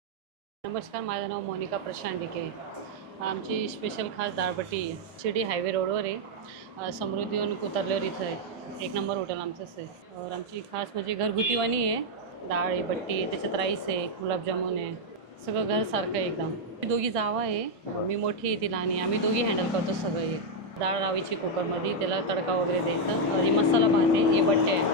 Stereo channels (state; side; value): normal; both; correlation -0.01